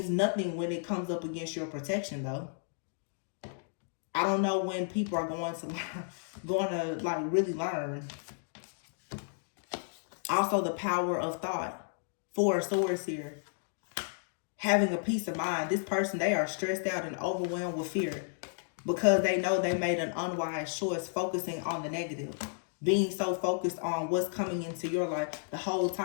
nothing when it comes up against your protection, though. I don't know when people are going to like really learn. Also, the power of thought. Four of Swords here. Having a peace of mind. This person, they are stressed out and overwhelmed with fear because they know they made an unwise choice focusing on the negative. Being so focused on what's coming into your life the whole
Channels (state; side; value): silent; right; digital silence